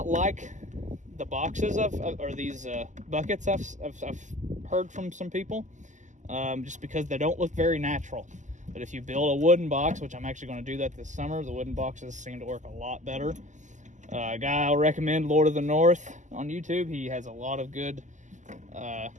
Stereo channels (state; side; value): late; left; 0.35 ms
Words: like the boxes or these buckets. I've heard from some people, just because they don't look very natural. But if you build a wooden box, which I'm actually going to do that this summer, the wooden boxes seem to work a lot better. A guy I'll recommend, Lord of the North on YouTube. He has a lot of good